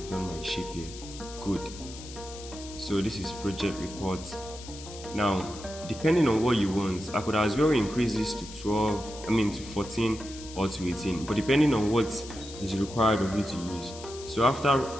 my shape here. Good. So this is project reports. Now, depending on what you want, I could as well increase this to 14 or to 18, but depending on what is required of you to use. So after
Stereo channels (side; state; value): left; noise; hiss, 15 dB below the sound